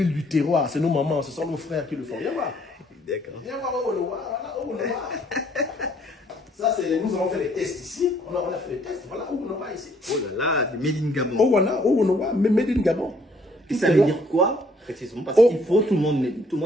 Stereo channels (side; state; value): both; normal; correlation 0.63